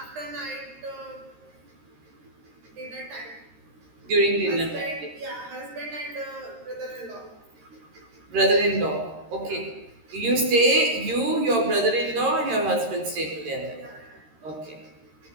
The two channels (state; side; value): late; left; 13 ms